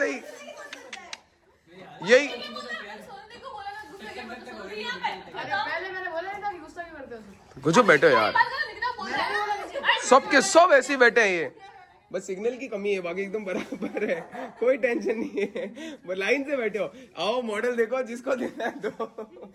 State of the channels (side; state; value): both; identical; correlation 1.00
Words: यही कुछ बैठे हो यार, सबके सब ऐसे ही बैठे हैं। ये बस सिग्नल की कमी है, बाकी एकदम बराबर है, कोई टेंशन नहीं है। वो लाइन से बैठे हो। आओ मॉडल देखो, जिसको देना है दो।